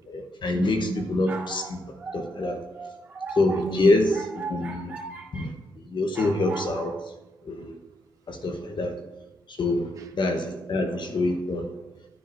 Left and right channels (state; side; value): normal; both; correlation 0.79